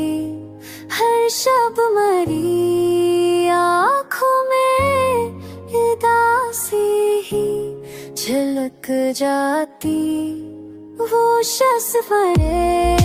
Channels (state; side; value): identical; both; correlation 1.00